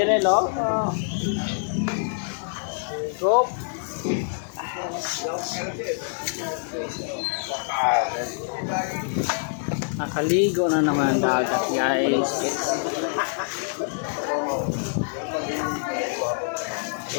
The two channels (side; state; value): right; silent; digital silence